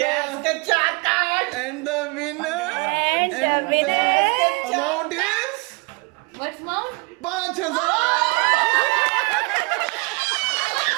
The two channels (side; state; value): left; quieter; 30.0 dB